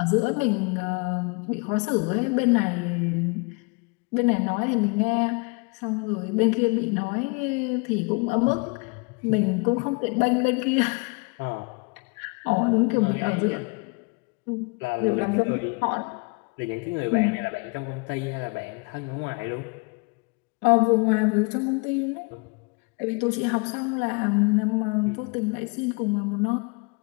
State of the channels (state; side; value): quieter; right; 30.5 dB